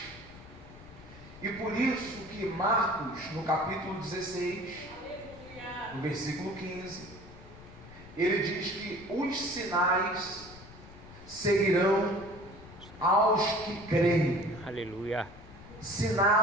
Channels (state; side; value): noise; left; rumble, 18 dB below the sound